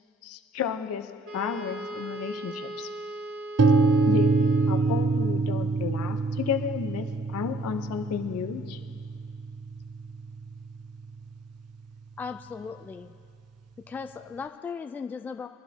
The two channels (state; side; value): normal; both; correlation 0.60